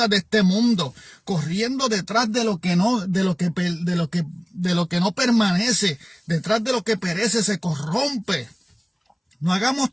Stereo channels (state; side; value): identical; both; correlation 1.00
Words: de este mundo, corriendo detrás de lo que no permanece, detrás de lo que perece, se corrompe. No hagamos